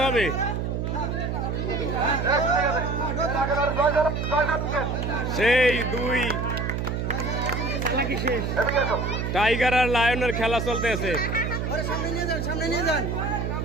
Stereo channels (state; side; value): noise; right; hum, 2 dB below the sound